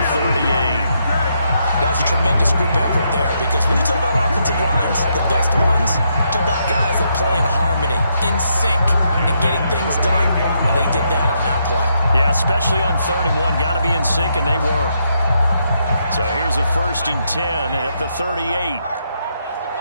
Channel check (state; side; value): inverted; both; correlation -0.77